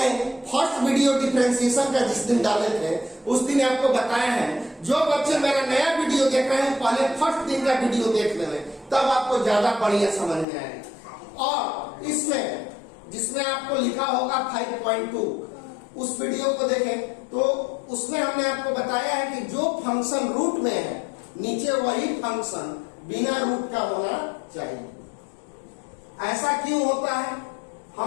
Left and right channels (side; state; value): right; drops out; at 10.5 s